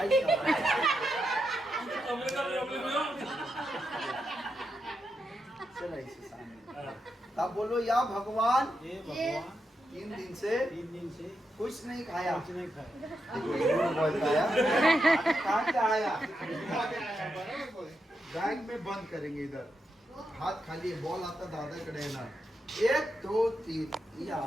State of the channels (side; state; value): both; normal; correlation 0.85